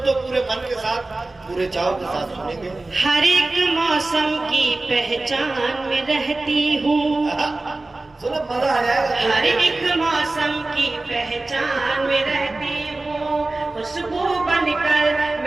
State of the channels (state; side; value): quieter; left; 3.0 dB